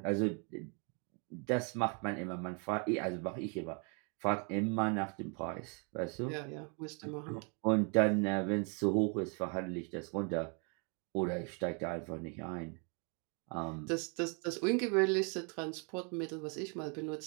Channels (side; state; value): left; quieter; 36.6 dB